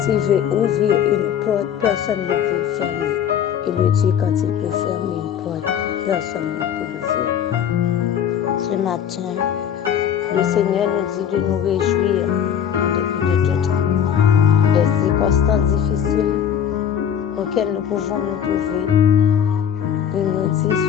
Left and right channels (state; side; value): quieter; right; 8.8 dB